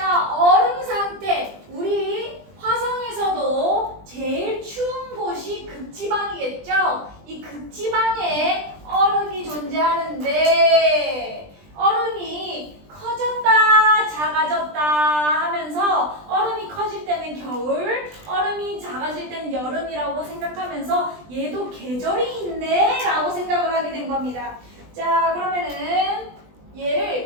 얼음 상태. 우리 화성에서도 제일 추운 곳이 극지방이겠죠? 이 극지방에 얼음이 존재하는데 얼음이 커졌다 작아졌다 하면서 얼음이 커질 때는 겨울, 얼음이 작아질 때는 여름이라고 생각하면서 얘도 계절이 있네 라고 생각을 하게 된 겁니다. 자, 그러면은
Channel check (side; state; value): left; late; 20 ms